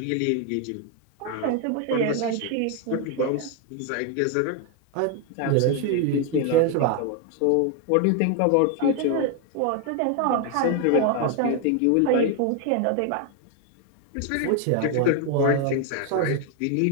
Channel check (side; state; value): both; different; correlation 0.01